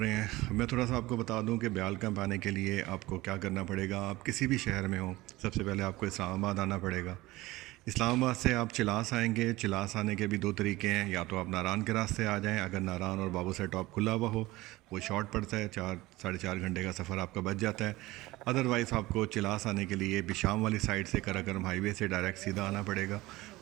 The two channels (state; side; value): quieter; left; 19.2 dB